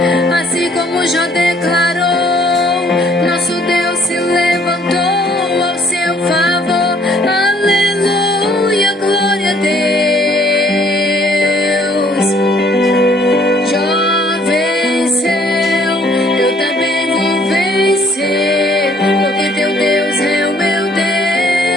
assim como Jó declarou, nosso Deus se levantou ao seu favor. Aleluia, glória a Deus. Jó venceu, eu também vou vencer, porque teu Deus é o meu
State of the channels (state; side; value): normal; both; correlation 0.61